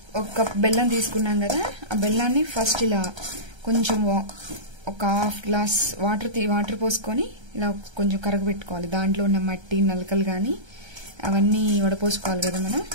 1 కప్ బెల్లం తీసుకున్నాం కదా, ఆ బెల్లాన్ని ఫస్ట్ ఇలా కొంచెం ఒక 1/2 గ్లాస్ వాటర్ పోసుకొని ఇలా కొంచెం కరగబెట్టుకోవాలి. దాంట్లో ఉన్న మట్టి నలకలు కానీ అవన్నీ వడపోసుకోవాలి కదా మనం.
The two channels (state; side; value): late; left; 1.3 ms